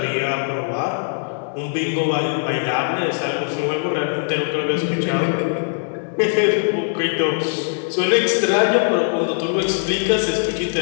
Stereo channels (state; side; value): silent; right; digital silence